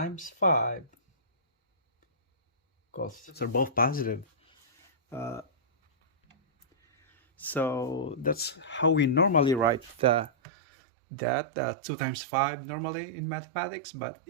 5, because they're both positive. So that's how we normally write that 2 times 5 normally in mathematics, but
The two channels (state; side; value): drops out; left; at 10.3 s